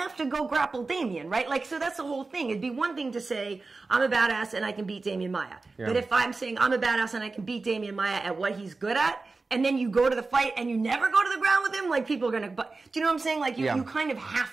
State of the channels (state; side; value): quieter; left; 3.8 dB